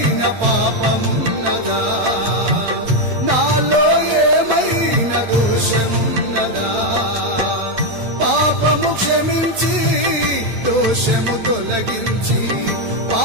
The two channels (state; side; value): late; left; 8.8 ms